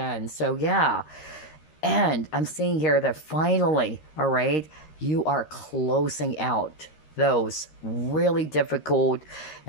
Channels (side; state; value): right; late; 13 ms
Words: So yeah. And I'm seeing here that finally, all right, you are closing out those really difficult